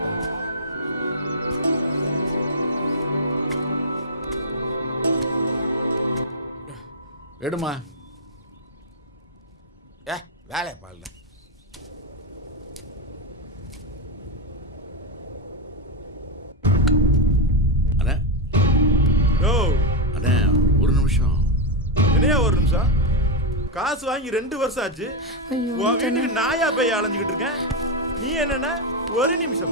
எடுமா. வேலை பாருல. அண்ணா யோ அண்ணா ஒரு நிமிஷம். என்னையா ஒரு நிமிஷம்? காசு வாங்கி 2 வருஷம் ஆச்சு. உன் வீட்டுக்கு நாயா போய் அலைஞ்சுக்கிட்டு இருக்கேன். நீ என்னன்னா ஒரு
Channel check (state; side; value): normal; both; correlation 0.02